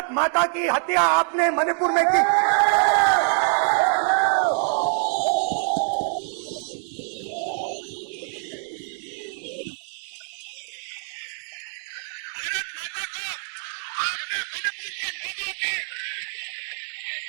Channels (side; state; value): left; silent; 62 dB below the other